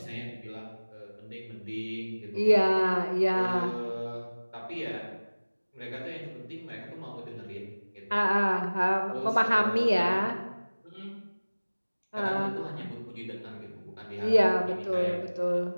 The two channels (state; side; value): inverted; both; correlation -1.00